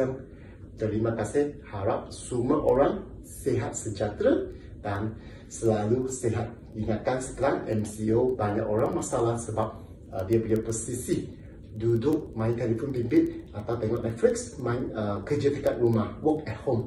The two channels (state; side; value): identical; both; correlation 1.00